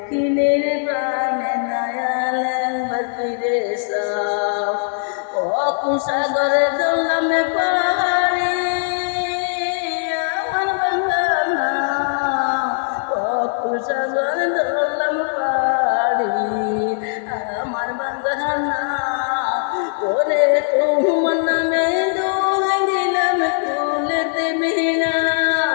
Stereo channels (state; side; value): silent; right; digital silence